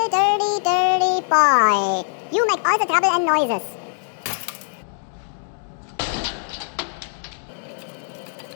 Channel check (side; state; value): right; silent; digital silence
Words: dirty, dirty boy. You make all the trouble and noises.